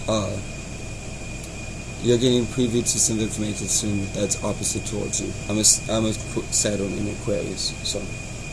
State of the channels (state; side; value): identical; both; correlation 1.00